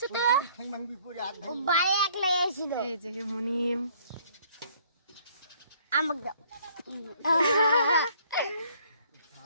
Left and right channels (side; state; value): both; inverted; correlation -0.60